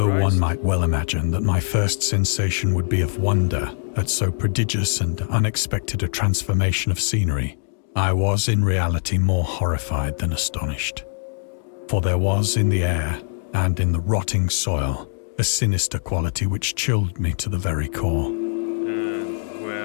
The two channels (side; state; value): right; silent; digital silence